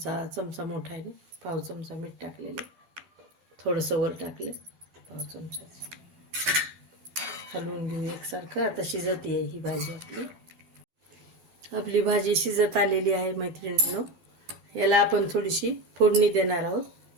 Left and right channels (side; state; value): left; late; 12 ms